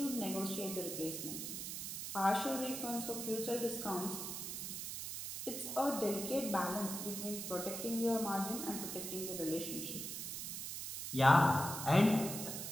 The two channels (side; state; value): right; noise; hiss, 5 dB below the sound